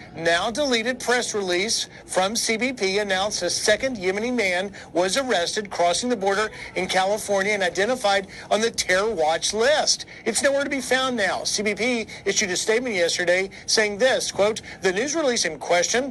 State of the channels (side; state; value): both; identical; correlation 1.00